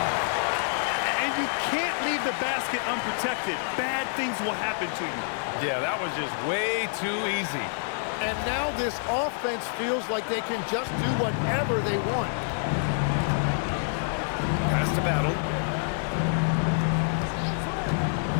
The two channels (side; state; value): right; silent; 60 dB below the other